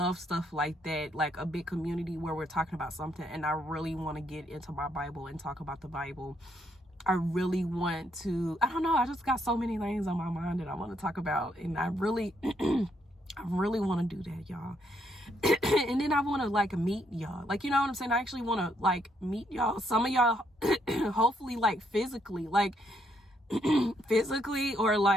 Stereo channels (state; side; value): normal; both; correlation 0.74